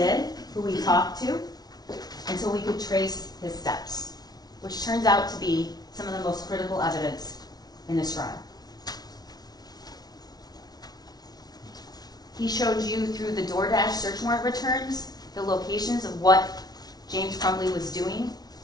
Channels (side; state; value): right; late; 0.19 ms